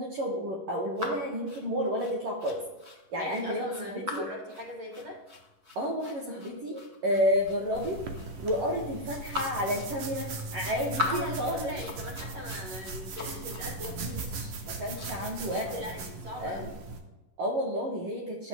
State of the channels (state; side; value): late; left; 11 ms